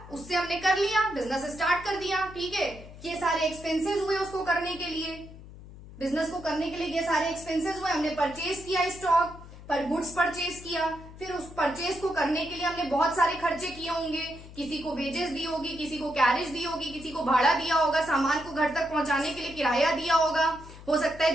उससे हमने कर लिया, बिजनेस स्टार्ट कर दिया, ठीक है। ये सारे एक्सपेंसेस हुए उसको करने के लिए, बिजनेस को करने के लिए ये सारे एक्सपेंसेस हुए। हमने परचेज किया स्टॉक पर, गुड्स परचेज किया, फिर उस परचेज को करने के लिए हमने बहुत सारे खर्चे किए होंगे। किसी को वेजेस दी होगी, किसी को कैरेज दी होगी, किसी को भाड़ा दिया होगा, सामान को घर तक पहुंचाने के लिए किराया दिया होगा। हो सकता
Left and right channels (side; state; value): left; noise; hum, 16 dB below the sound